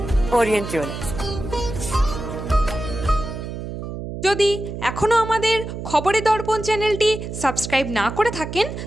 Orient Jewellers. যদি এখনও আমাদের খবরের দর্পণ চ্যানেলটি সাবস্ক্রাইব না করে থাকেন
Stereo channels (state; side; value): noise; right; hum, 7 dB below the sound